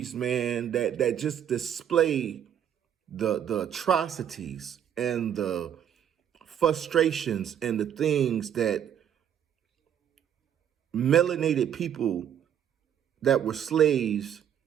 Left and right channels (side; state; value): left; quieter; 9.4 dB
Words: man, that just display the atrocities and the frustrations and the things that melanated people that were slaves